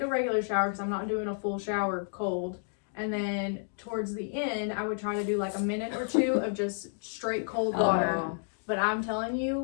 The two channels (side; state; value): right; silent; digital silence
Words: regular shower because I'm not doing a full shower cold. And then towards the end, I would try to do like a minute or two of just straight cold water. Oh. But I'm telling